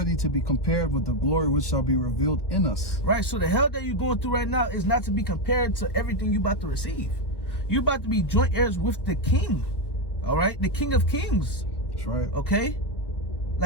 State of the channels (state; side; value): late; right; 1.2 ms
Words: to be compared with the glory which shall be revealed in us. Right, so the hell that you're going through right now is not to be compared to everything you're about to receive. You're about to be joint heirs with the King. All right? The King of Kings. That's right. Okay?